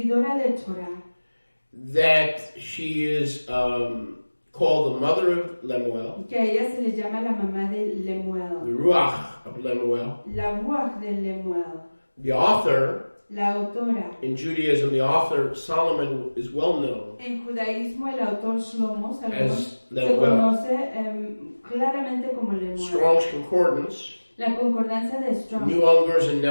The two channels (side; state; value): both; inverted; correlation -1.00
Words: de Torah, that she is called the mother of Lemuel, que a ella se le llama la mamá de the Lemuel, Ruach of Lemuel. la ruach de Lemuel, The author, la autora. in Judaism, the author Solomon is well known En judaísmo el autor Shlomo Salomón As se Lemuel. conoce claramente como Lemuel. Strong's Concordance, La concordancia de Strong New Unger's and